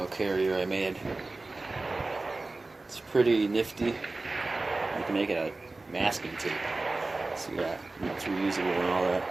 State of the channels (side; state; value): left; quieter; 3.2 dB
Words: carrier I made. It's pretty nifty. You can make it a masking tape. See that? It's reusable and all that.